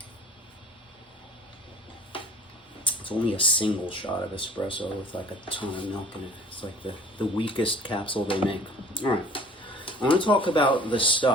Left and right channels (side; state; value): both; normal; correlation 0.50